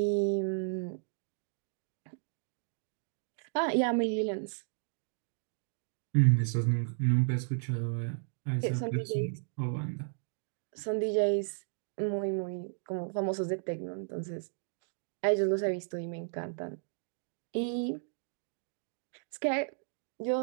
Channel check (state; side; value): silent; left; digital silence